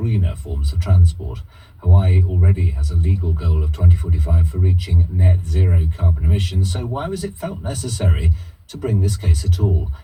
forms of transport. Hawaii already has a legal goal of 2045 for reaching net zero carbon emissions, so why was it felt necessary to bring this case at all?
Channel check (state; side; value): identical; both; correlation 1.00